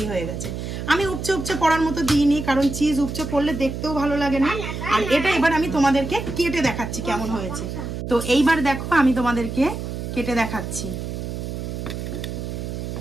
হয়ে গেছে। আমি উপচে উপচে পড়ার মতো দিইনি, কারণ চিজ উপচে পড়লে দেখতেও ভালো লাগে না। আর এটা এবার আমি তোমাদেরকে কেটে দেখাচ্ছি কেমন হয়েছে। তো এইবার দেখো আমি তোমাদেরকে কেটে দেখাচ্ছি।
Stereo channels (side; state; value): right; noise; hum, 6 dB below the sound